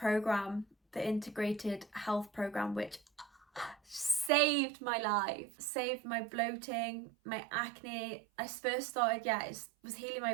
the integrated health program, which saved my life, saved my bloating, my acne. I first started, it was healing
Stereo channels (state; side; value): drops out; left; at 4.3 s